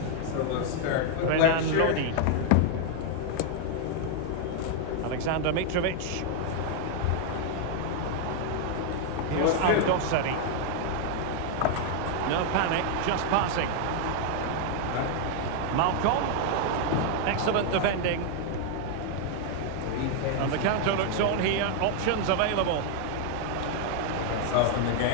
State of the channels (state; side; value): different; both; correlation 0.00